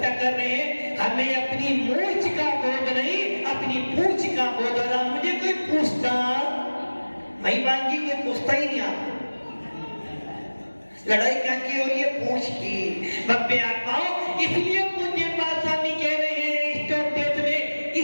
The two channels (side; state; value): both; inverted; correlation -1.00